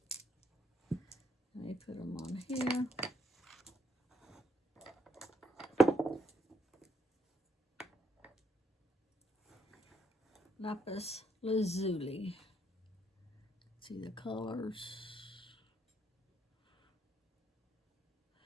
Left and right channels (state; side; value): normal; both; correlation 0.72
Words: Let me put them on here. Lapis lazuli. See the colors.